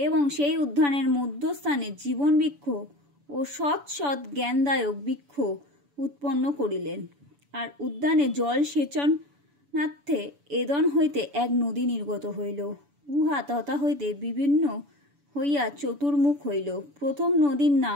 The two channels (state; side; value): late; left; 7.0 ms